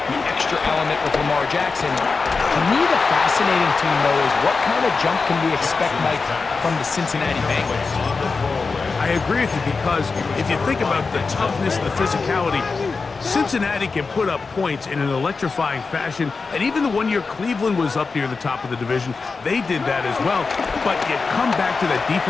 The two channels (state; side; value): quieter; right; 4.4 dB